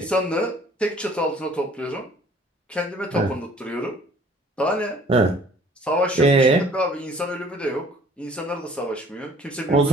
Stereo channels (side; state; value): both; normal; correlation 0.54